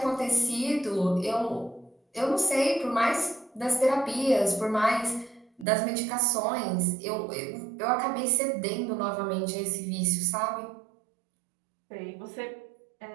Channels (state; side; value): drops out; left; at 5.7 s